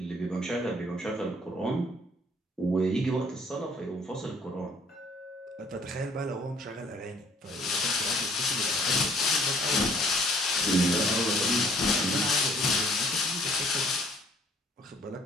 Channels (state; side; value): normal; both; correlation 0.59